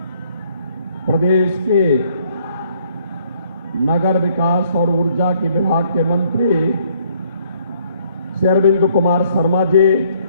प्रदेश के नगर विकास और ऊर्जा के विभाग के मंत्री श्री अरविंद कुमार शर्मा जी,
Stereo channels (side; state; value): both; inverted; correlation -0.63